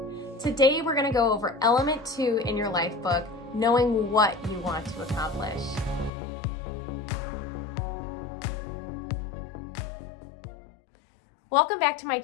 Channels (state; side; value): drops out; right; at 6.1 s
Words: Today, we're going to go over element 2 in your life book, knowing what you want to accomplish. Welcome back to my